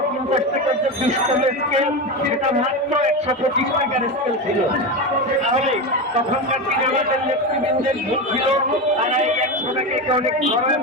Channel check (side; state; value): both; normal; correlation 0.18